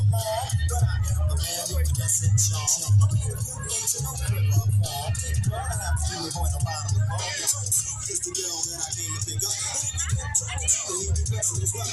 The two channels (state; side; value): identical; both; correlation 1.00